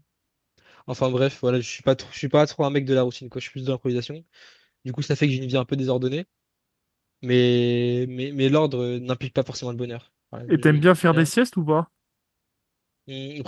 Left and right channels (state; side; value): identical; both; correlation 1.00